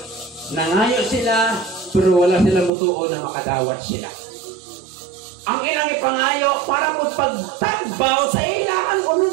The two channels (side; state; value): left; drops out; at 2.7 s